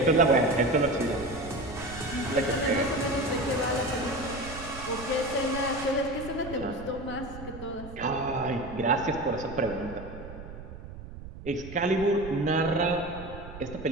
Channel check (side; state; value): right; noise; rumble, 13 dB below the sound